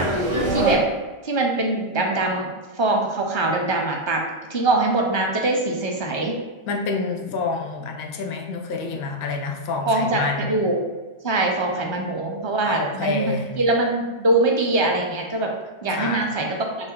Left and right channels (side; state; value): right; late; 1.3 ms